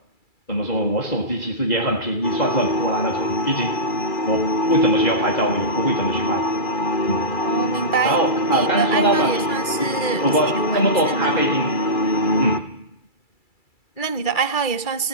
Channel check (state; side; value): late; right; 2.3 ms